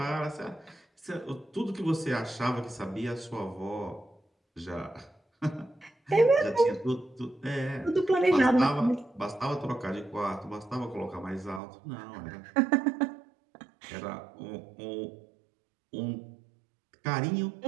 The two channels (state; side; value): drops out; left; at 11.6 s